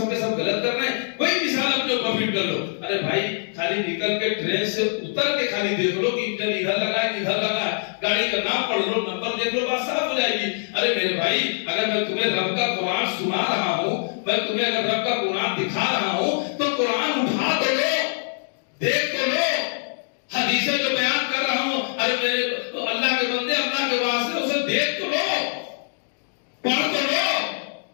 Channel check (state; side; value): silent; right; digital silence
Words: کے سب غلط کر رہے ہیں، کوئی مثال اپنے اوپر فٹ کر لو۔ ارے بھائی خالی نکل کے ٹرین سے اتر کے خالی دیکھ لو کہ انجن ادھر لگا ہے ادھر لگا ہے، گاڑی کا نام پڑھ لو، نمبر دیکھ لو، بات صاف ہو جائے گی۔ ارے میرے بھائی اگر میں تمہیں رب کا قرآن سنا رہا ہوں، میں تمہیں اگر رب کا قرآن دکھا رہا ہوں تو قرآن اٹھا تو لو، دیکھ تو لو، حدیثیں جو بیان کر رہا ہوں، ارے میرے اللہ کے بندے اللہ کے واسطے اسے دیکھ تو لو، پڑھ تو لو